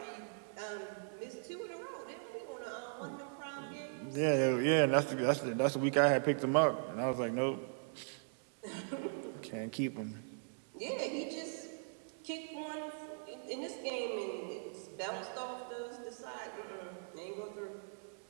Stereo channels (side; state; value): left; silent; digital silence